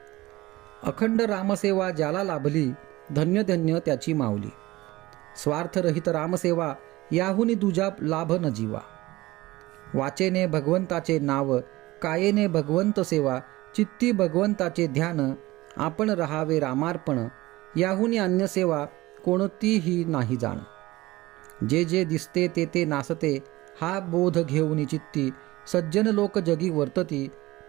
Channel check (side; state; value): left; quieter; 19.0 dB